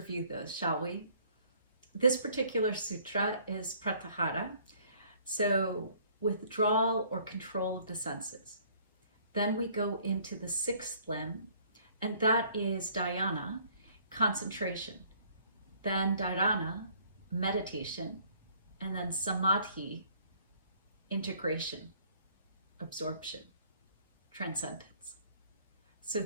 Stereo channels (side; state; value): both; inverted; correlation -0.59